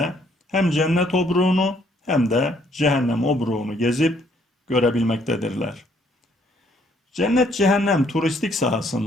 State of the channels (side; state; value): both; normal; correlation 0.67